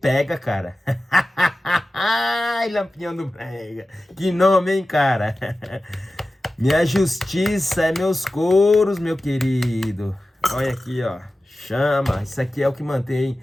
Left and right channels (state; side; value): normal; both; correlation 0.95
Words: cara. Ai, Lampião do Brega. Que nome, hein, cara? Minha justiça é meus couros, meu querido. Olha aqui, ó. Chama. Isso aqui é o que mantém